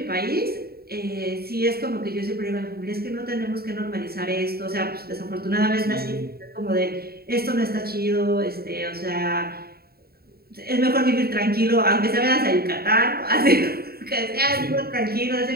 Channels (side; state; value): left; late; 0.45 ms